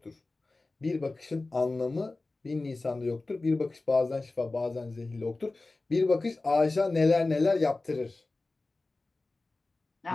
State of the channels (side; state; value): right; quieter; 3.3 dB